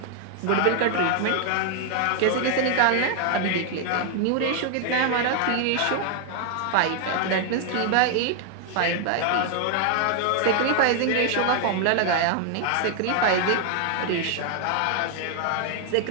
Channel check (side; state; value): both; different; correlation 0.00